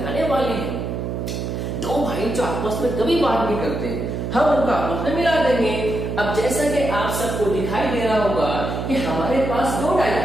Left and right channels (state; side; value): noise; right; hum, 3 dB below the sound